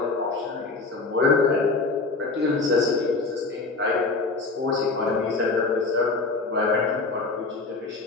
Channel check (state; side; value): quieter; right; 3.7 dB